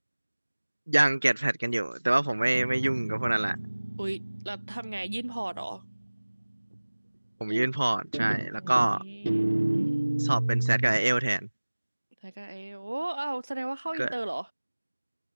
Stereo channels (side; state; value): both; inverted; correlation -1.00